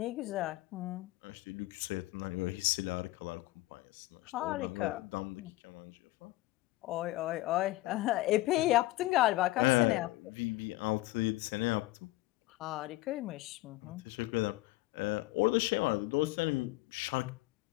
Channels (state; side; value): quieter; right; 18.6 dB